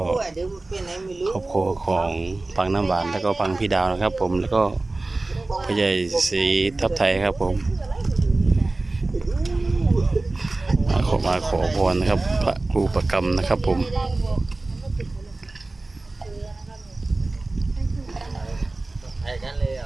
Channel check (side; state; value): left; quieter; 3.1 dB